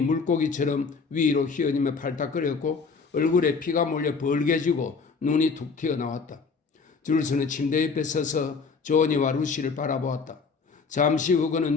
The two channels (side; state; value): right; quieter; 4.9 dB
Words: 물고기처럼 위로 휘어지며 팔딱거렸고 얼굴에 피가 몰려 벌개지고 눈이 툭 튀어나왔다. 줄스는 침대 옆에 서서 조언이와 루시를 바라보았다. 잠시 후